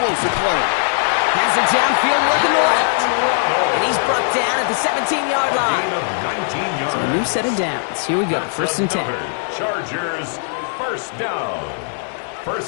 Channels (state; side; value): silent; right; digital silence